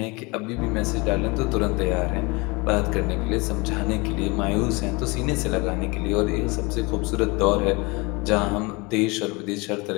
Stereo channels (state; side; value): quieter; right; 26.6 dB